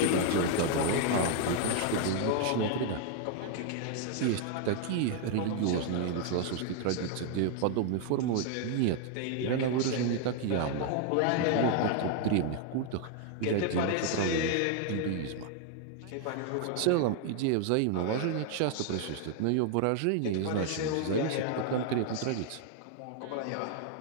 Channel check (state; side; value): different; both; correlation 0.00